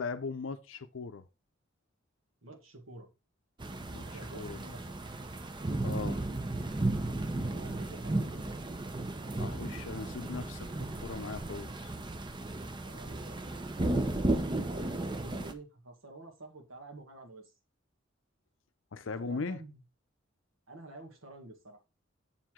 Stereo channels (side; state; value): both; normal; correlation 0.73